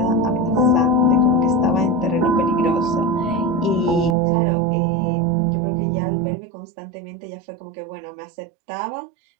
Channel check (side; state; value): left; drops out; at 4.2 s